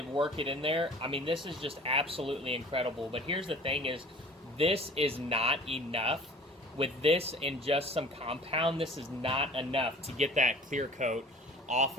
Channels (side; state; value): both; normal; correlation 0.46